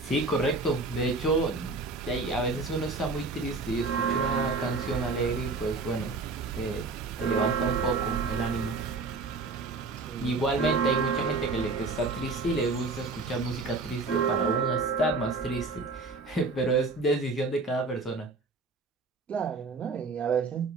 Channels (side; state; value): left; quieter; 3.7 dB